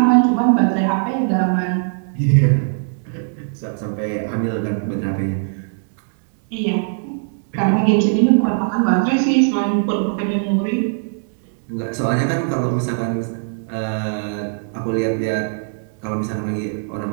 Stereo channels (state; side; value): silent; left; digital silence